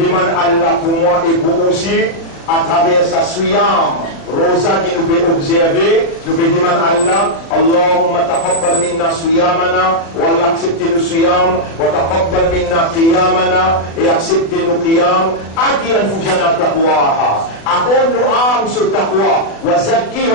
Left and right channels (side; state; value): right; late; 37 ms